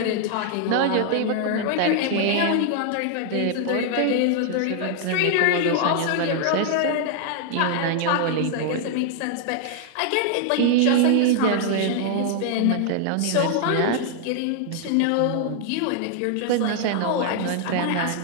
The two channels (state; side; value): different; both; correlation 0.00